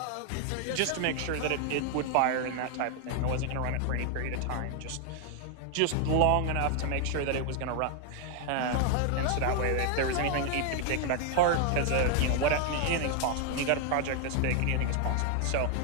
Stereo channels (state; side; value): different; both; correlation 0.00